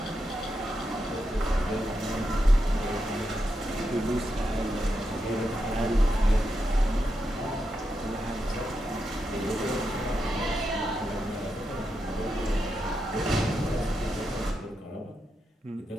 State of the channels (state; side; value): normal; both; correlation 0.85